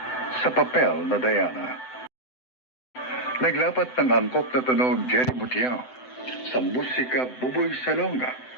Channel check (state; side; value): late; right; 7.9 ms